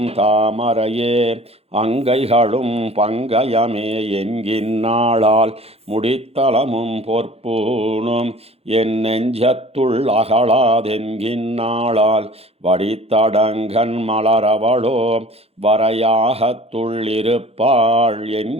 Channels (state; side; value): late; left; 0.29 ms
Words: தாமரையே அங்கைகளும் பங்கயமே என்கின்னாளால் முடித்தளமும் பொற்பூனும் என் நெஞ்சத்துள் அகலாதென்கின்னாளால் வடித்தடங்கன் மலரவளோ வரையாகத்துள்ளிருப்பாள்